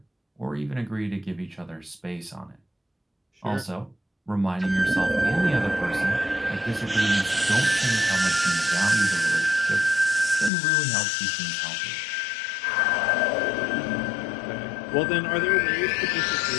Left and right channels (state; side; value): drops out; right; at 10.5 s